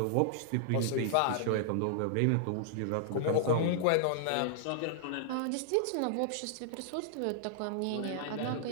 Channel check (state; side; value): different; both; correlation -0.01